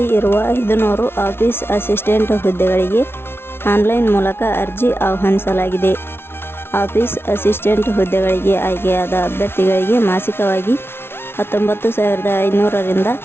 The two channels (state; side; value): late; right; 0.12 ms